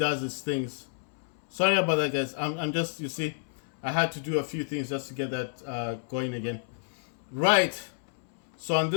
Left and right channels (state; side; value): silent; right; 58 dB below the other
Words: things. Sorry about that, guys. I'm just, you see, I had to do a few things just to get that going again. Right. So on